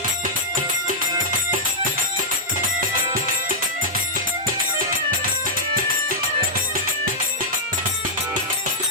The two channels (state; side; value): normal; both; correlation -0.08